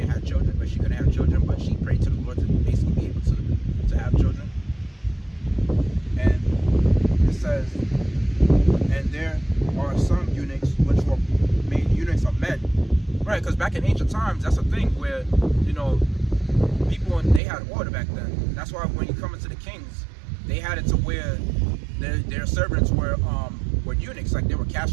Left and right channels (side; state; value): left; drops out; at 17.4 s